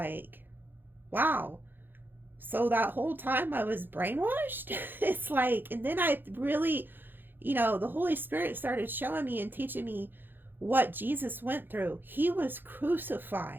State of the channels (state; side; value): late; left; 0.096 ms